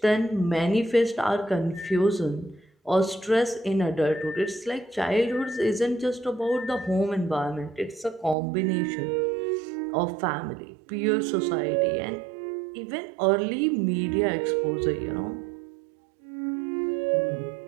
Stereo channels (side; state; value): left; drops out; at 8.3 s